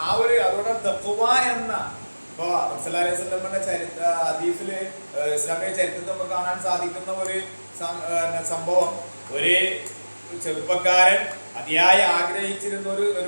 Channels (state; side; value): inverted; both; correlation -1.00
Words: ആ ഒരു അതുകൊണ്ട് തഖ്വ എന്ന ഇപ്പൊ റസൂലുള്ളാഹി സ്വല്ലല്ലാഹു അലൈഹി വസല്ലമയുടെ ഹദീസില് ഇസ്ലാമിക ചരിത്രത്തിൽ നമുക്ക് കാണാൻ സാധിക്കുന്ന ഒരു സംഭവം. ഒരു ചെറുപ്പക്കാരൻ അതിയായി ആഗ്രഹിച്ചിരുന്ന